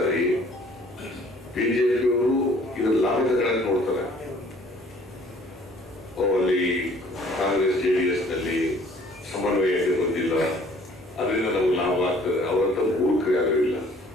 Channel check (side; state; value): both; normal; correlation 0.56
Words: BJPಯವರು ಇದರ ಲಾಭ ತಗೊಳಕ್ ನೋಡ್ತಾರೆ. ಅಲ್ಲಿ ಕಾಂಗ್ರೆಸ್ JDSನಲ್ಲಿ ಸಮನ್ವಯತೆ ಬಂದಿಲ್ಲ, ಅದರಿಂದ ನಮ್ಗೆ ಲಾಭ ಆಗ್ತದೆ. ಅವರಂತ ಮೂರ್ಖರು ಯಾರು ಇಲ್ಲ,